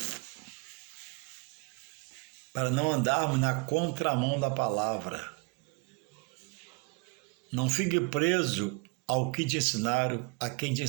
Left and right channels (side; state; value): left; quieter; 29.3 dB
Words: para não andarmos na contramão da palavra. Não fique preso ao que te ensinaram, a quem te